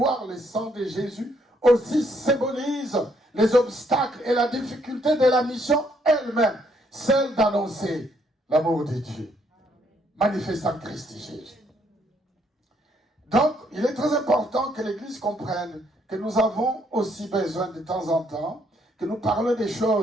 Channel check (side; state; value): both; normal; correlation 0.70